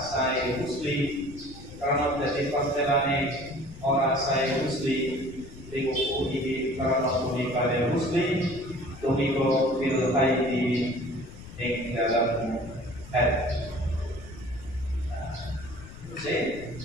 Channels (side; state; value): left; noise; rumble, 16 dB below the sound